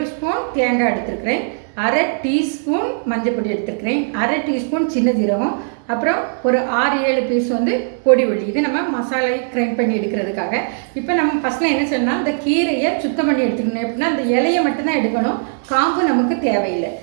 ஸ்பூன் தேங்காய் எடுத்துருக்கிறேன், 1/2 டீஸ்பூன் மஞ்சள் பொடி எடுத்துருக்கிறேன், 1/2 டீஸ்பூன் சின்ன ஜீரகம், அப்புறம் ஒரு 6-7 பீஸ் வந்து பொடி உள்ளி. இது நம்ம மசாலை கிரைண்ட் பண்ணி எடுக்கிறதுக்காக. இப்போ நம்ம ஃபஸ்ட்டில் என்ன செய்யணும்னா, இந்த கீரையை சுத்தம் பண்ணி எடுத்துக்கணும். எப்படின்னா அந்த இலையை மட்டும்தான் எடுக்கணும், காம்பு நமக்கு தேவையில்லை.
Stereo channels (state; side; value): silent; left; 65 dB below the other